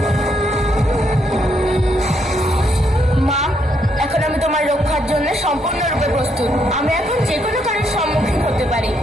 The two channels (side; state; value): both; normal; correlation 0.75